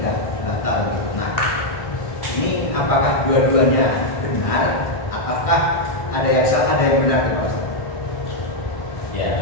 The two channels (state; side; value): late; right; 1.6 ms